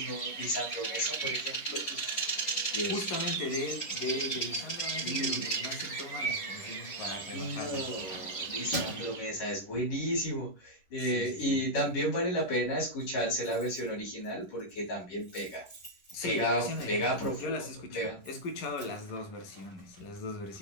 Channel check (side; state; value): right; late; 11 ms